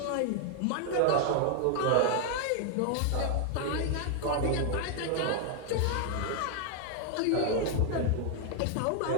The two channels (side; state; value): both; different; correlation 0.00